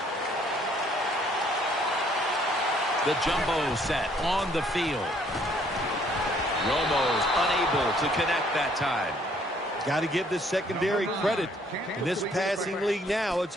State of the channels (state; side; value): normal; both; correlation 0.63